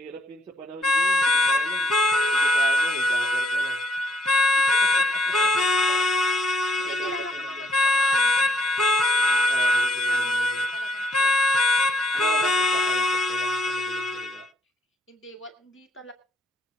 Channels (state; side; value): normal; both; correlation 0.70